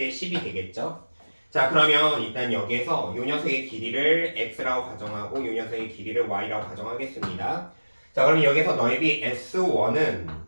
10이 되겠죠. 자, 그러면 일단 여기에서 요 녀석의 길이를 x라고 가정하고 요 녀석의 길이를 y라고 가정하겠습니다. 자, 그럼 여기서 넓이 S1은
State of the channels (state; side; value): inverted; both; correlation -1.00